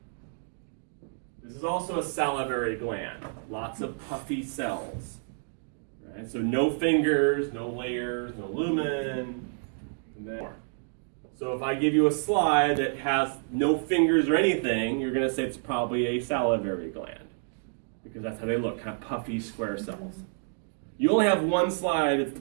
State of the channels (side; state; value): left; silent; digital silence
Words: This is also a salivary gland. Lots of puffy cells. Right? So no fingers, no layers, no lumen. And then more. So if I give you a slide that has no fingers or anything, you're going to say it's probably a salivary gland. Because that's how they look, kind of puffy square cells. You only have one slide, it's